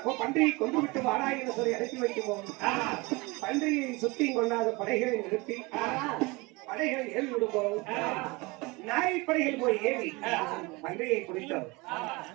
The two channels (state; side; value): quieter; left; 24.8 dB